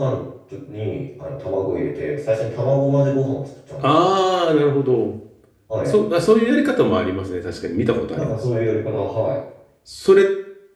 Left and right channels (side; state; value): both; identical; correlation 1.00